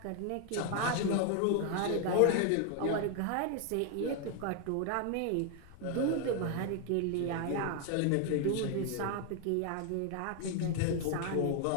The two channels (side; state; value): both; different; correlation 0.00